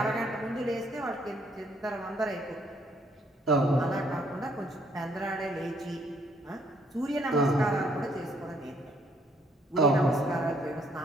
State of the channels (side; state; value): both; normal; correlation 0.67